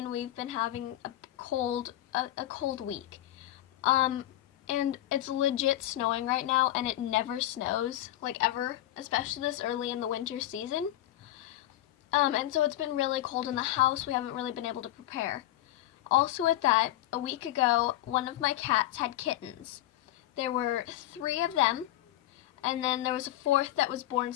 we've been having a cold week. And it's legit snowing right now, and it never snows, like ever, especially this early in the winter season. And so it's been really cold in the house. We haven't really been able to prepare. Also with that, a week ago, one of my cats had kittens. There were 3 of them, and then there was a 4th that was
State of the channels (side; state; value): right; quieter; 14.5 dB